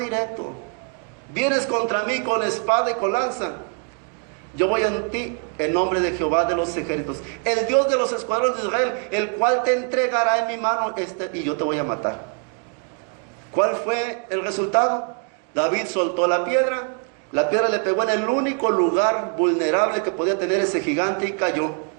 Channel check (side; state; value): left; quieter; 39.6 dB